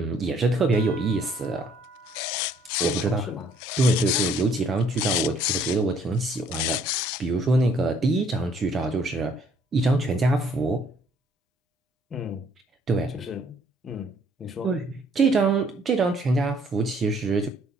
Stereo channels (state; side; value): normal; both; correlation 0.62